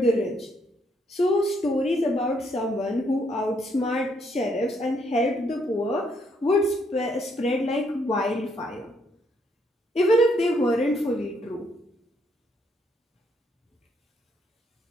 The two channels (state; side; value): normal; both; correlation 0.72